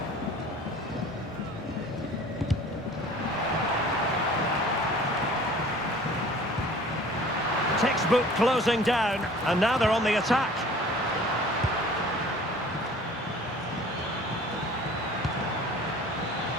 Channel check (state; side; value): normal; both; correlation 0.47